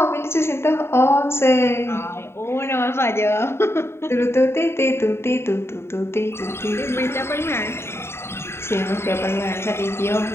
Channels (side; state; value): right; late; 0.12 ms